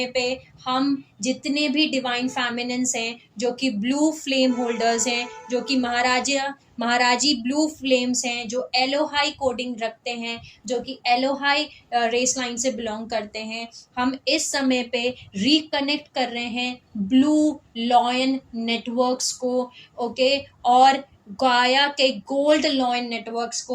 पे हम जितने भी डिवाइन फेमिनिन्स हैं जो कि ब्लू फ्लेम होल्डर्स हैं, जो कि महाराजी ब्लू फ्लेम्स हैं, जो एलोहाई कोडिंग रखते हैं, जो कि एलोहाई रेस लाइन से बिलोंग करते हैं, हम इस समय पे रिकनेक्ट कर रहे हैं ब्लू लॉयन नेटवर्क्स को, ओके। और गाया के गोल्ड लॉइन नेटवर्क्स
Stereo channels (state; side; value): identical; both; correlation 1.00